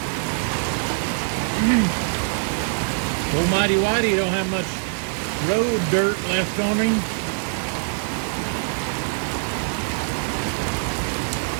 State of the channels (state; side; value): silent; left; 57 dB below the other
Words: Almighty Whitey don't have much road dirt left on him.